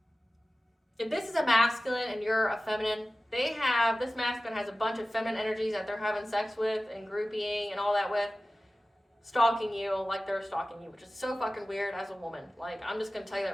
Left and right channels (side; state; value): both; normal; correlation 0.96